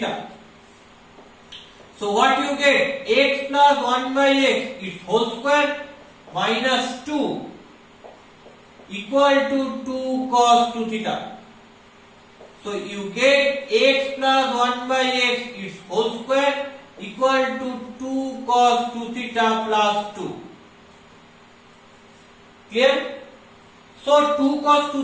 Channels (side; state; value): both; identical; correlation 1.00